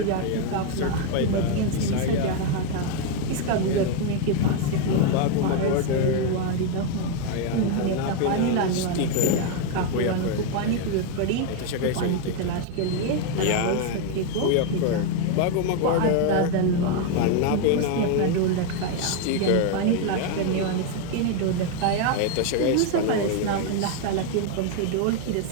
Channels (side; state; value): both; different; correlation 0.01